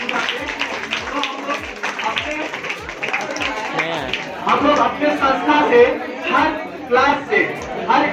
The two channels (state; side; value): identical; both; correlation 1.00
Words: हम लोग अपने संस्था से हर क्लास